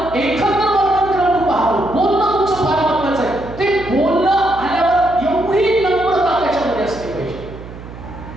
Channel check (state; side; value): noise; right; hum, 14 dB below the sound